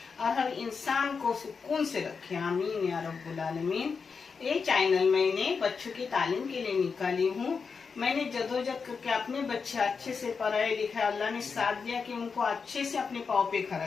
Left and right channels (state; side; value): quieter; right; 5.4 dB